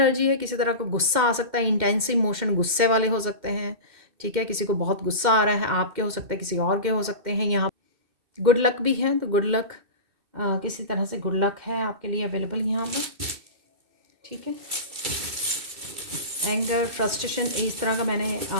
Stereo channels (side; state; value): left; late; 2.1 ms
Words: है, किसी तरह का गुस्सा आ सकता है, इंटेंस इमोशन गुस्से वाले हो सकते हैं, ठीक है। किसी को बहुत गुस्सा आ रहा है, आपके हो सकता है, किसी और के हो सकते हैं। यहाँ गुड लक भी है, तो गुड लक किसी तरह से गुड लक है आपके लिए अवेलेबल यहाँ पर, ठीक है। एंगर, फ्रस्ट्रेशन, इस तरह का मैंने